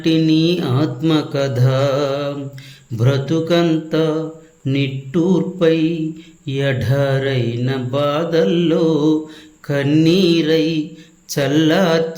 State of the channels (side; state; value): both; identical; correlation 1.00